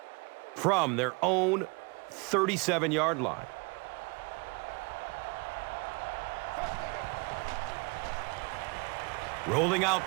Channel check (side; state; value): left; quieter; 30.0 dB